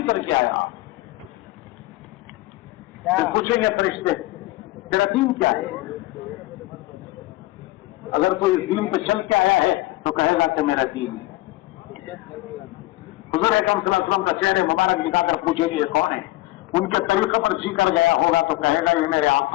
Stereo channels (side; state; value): right; quieter; 18.4 dB